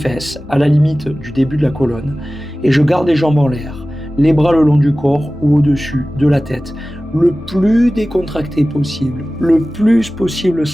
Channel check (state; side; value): normal; both; correlation 0.96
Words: à la limite du début de la colonne, et je garde les jambes en l'air. Les bras le long du corps ou au-dessus de la tête, le plus décontracté possible, le plus possible